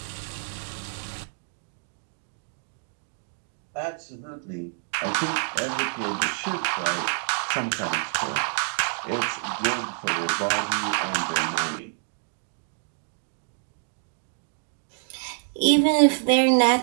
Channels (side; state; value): left; silent; digital silence